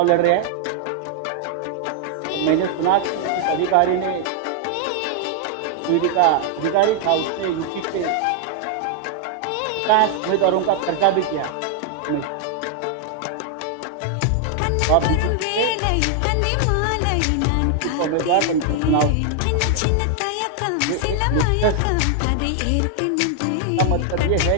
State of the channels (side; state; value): both; different; correlation 0.00